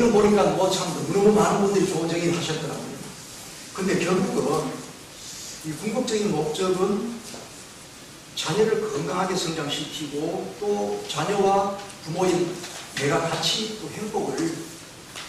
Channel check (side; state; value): both; identical; correlation 1.00